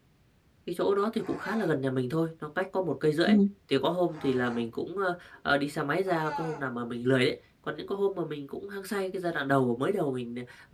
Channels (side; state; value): both; identical; correlation 1.00